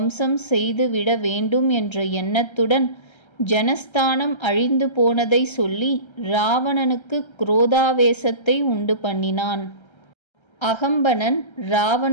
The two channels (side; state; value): right; late; 1.3 ms